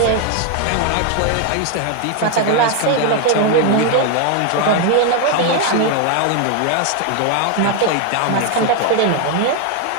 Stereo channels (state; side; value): different; both; correlation 0.01